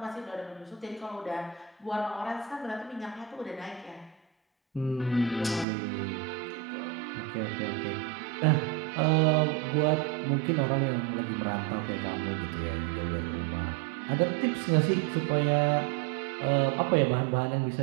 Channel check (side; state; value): left; drops out; at 5.7 s